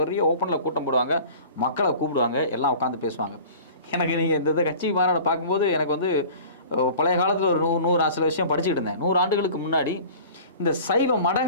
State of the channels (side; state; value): both; inverted; correlation -0.43